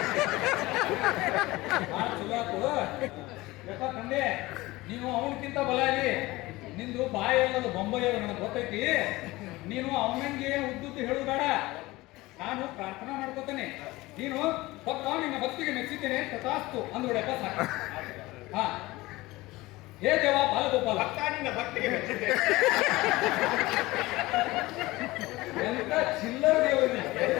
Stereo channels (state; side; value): quieter; right; 19.9 dB